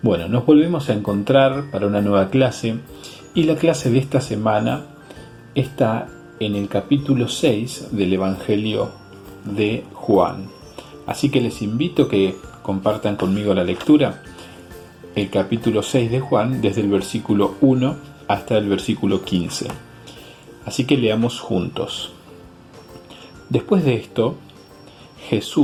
Bueno, nos volvemos a encontrar para una nueva clase y la clase de esta semana está en el capítulo 6 del Evangelio de Juan. Así que les invito a que compartan conmigo la lectura, el capítulo 6 de Juan desde el versículo 1 hasta el versículo 15. Así que leamos juntos. Después de esto,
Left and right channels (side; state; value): both; identical; correlation 1.00